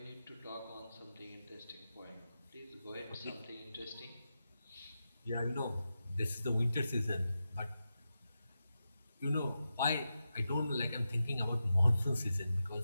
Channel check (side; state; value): both; inverted; correlation -0.90